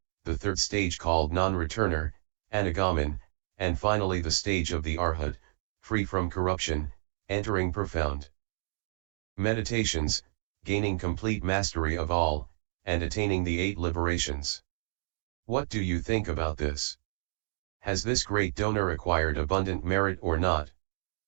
the third stage called non-returner, Anagaman, and finally the stage of the Arhat, free from corruption, entering profound meditations, gaining complete mastery of all, and attaining the 8 liberations. What do you think about this? Has this great donor acquired abundant merit or not?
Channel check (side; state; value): left; silent; digital silence